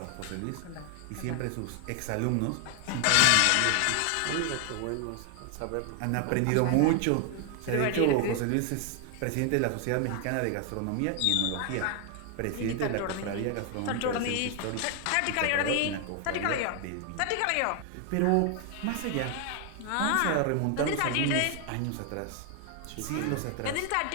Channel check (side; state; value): both; different; correlation 0.00